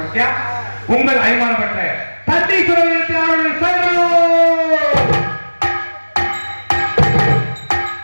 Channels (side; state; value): both; inverted; correlation -1.00